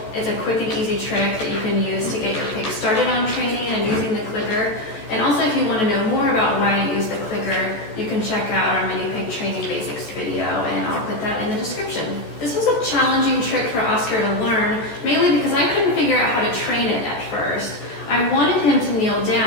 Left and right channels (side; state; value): right; late; 14 ms